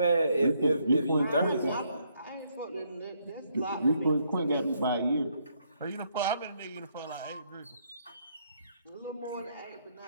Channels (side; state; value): both; inverted; correlation -0.73